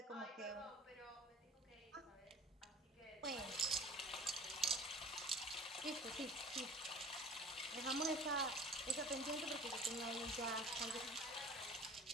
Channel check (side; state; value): both; normal; correlation 0.45